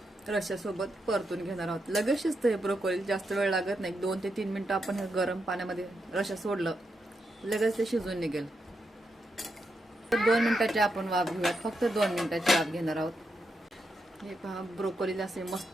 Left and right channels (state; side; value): normal; both; correlation 0.84